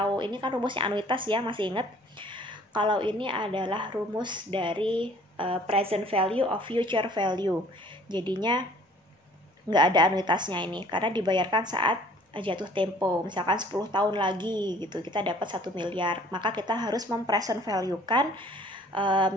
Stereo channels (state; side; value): normal; both; correlation 0.54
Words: ini kan rumusnya anuitas ya, masih ingat? Kalau ini adalah rumus dari present value of future value. Jadinya nggak ada anuitasnya ini, karena dibayarkan saat jatuh tempo. Misalkan 10 tahun lagi gitu, kita dapat 1 miliar. Maka kita harus mempresent value-kan